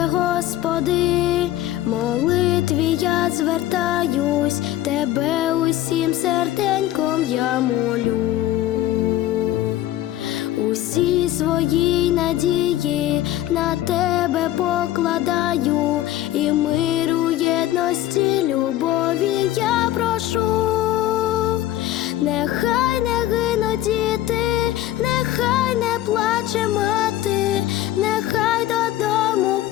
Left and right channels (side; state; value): right; quieter; 13.9 dB